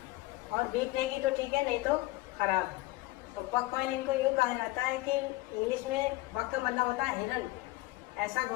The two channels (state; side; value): quieter; right; 19.6 dB